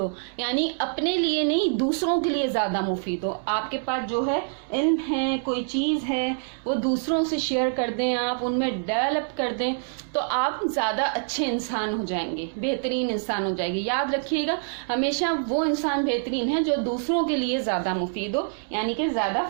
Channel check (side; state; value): left; silent; 61 dB below the other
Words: یعنی اپنے لیے نہیں، دوسروں کے لیے زیادہ مفید ہو. آپ کے پاس جو ہے علم ہے، کوئی چیز ہے، وہ دوسروں سے شیئر کر دیں، آپ ان میں ڈیولپ کر دیں تو آپ زیادہ اچھے انسان ہو جائیں گے، بہترین انسان ہو جائے گی. یاد رکھیے گا ہمیشہ وہ انسان بہترین ہے جو دوسروں کے لیے زیادہ مفید ہو، یعنی کہ زیادہ